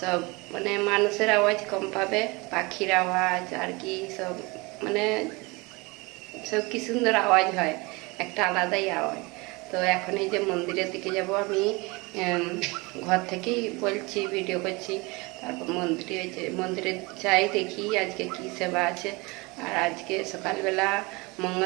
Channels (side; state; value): left; quieter; 25.5 dB